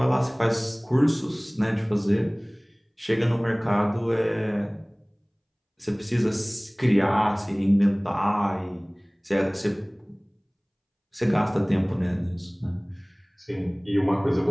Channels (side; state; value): both; identical; correlation 1.00